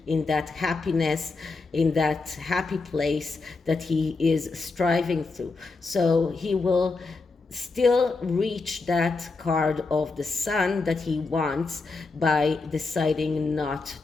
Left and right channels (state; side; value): quieter; right; 3.9 dB